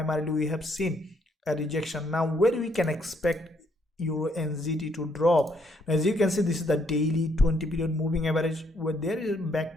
we have seen a rejection. Now where we can expect EURUSD to drop? Now, as you can see, this is the daily 20 period moving average, where there is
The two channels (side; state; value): both; normal; correlation 0.71